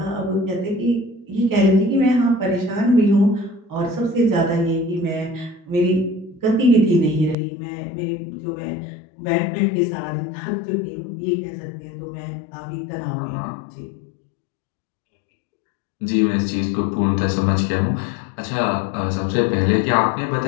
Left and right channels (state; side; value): drops out; right; at 7.4 s